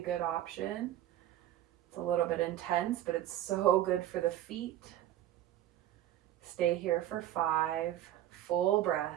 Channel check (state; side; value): quieter; left; 12.8 dB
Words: option. It's a little bit intense, but it's so good for the feet. Stay here for 5 full